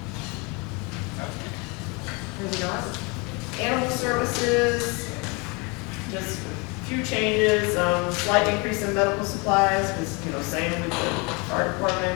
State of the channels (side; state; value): right; quieter; 28.2 dB